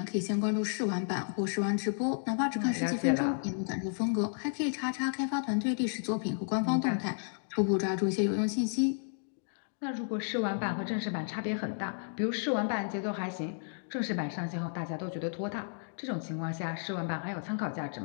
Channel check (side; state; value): right; silent; digital silence